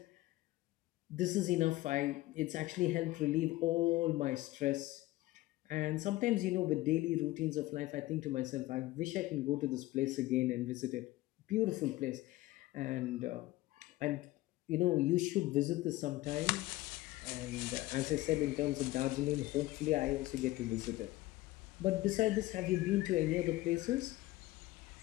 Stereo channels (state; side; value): quieter; right; 17.9 dB